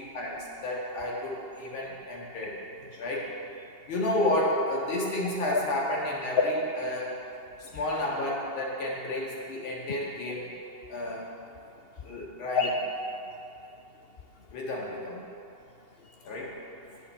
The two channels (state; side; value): late; right; 2.8 ms